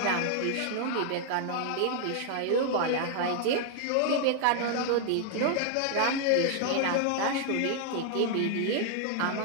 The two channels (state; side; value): different; both; correlation 0.00